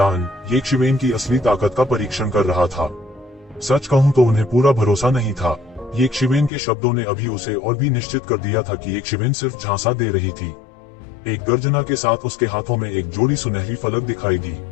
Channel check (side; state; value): right; drops out; at 6.5 s